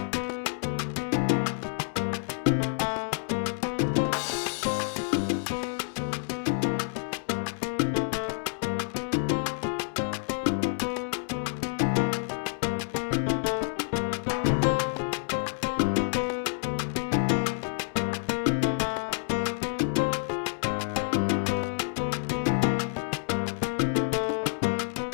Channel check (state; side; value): silent; right; 59 dB below the other